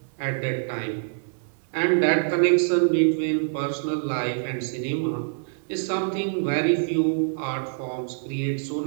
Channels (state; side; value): silent; left; 62 dB below the other